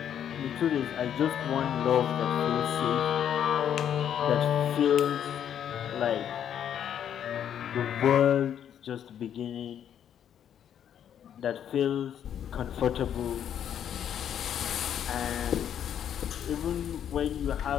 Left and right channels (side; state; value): right; quieter; 9.4 dB